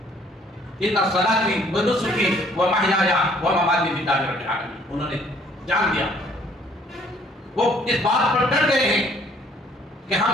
ان صلاتی و نسکی و محیایا و مماتی للہ رب العالمین، انہوں نے جان دیا، وہ اس بات پر ڈٹ گئے ہیں کہ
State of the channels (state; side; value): normal; both; correlation 0.60